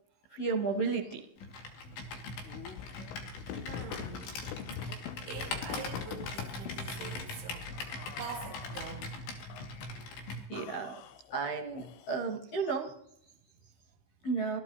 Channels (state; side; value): late; right; 16 ms